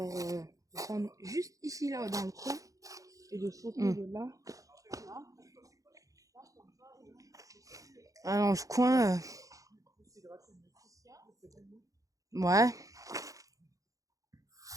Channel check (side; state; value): left; late; 0.16 ms